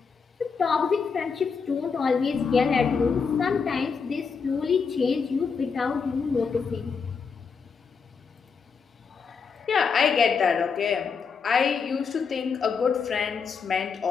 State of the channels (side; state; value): right; quieter; 5.6 dB